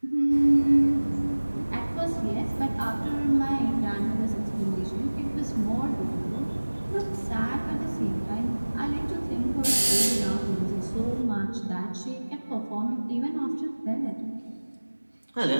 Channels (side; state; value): both; inverted; correlation -1.00